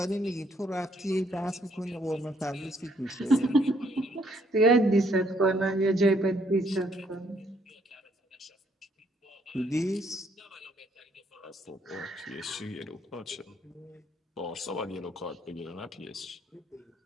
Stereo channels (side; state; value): both; normal; correlation 0.68